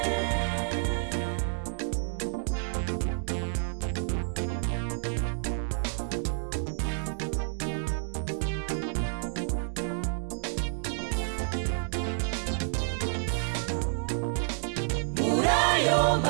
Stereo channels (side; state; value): left; silent; digital silence